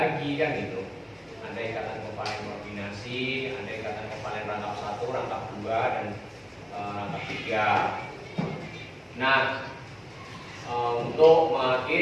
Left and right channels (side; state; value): both; identical; correlation 1.00